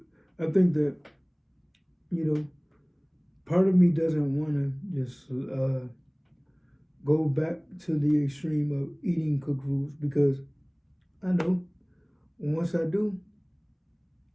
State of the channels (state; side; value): identical; both; correlation 1.00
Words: I think that you know part of me doesn't want to just go back to the extreme of eating cooked foods because I know once I do,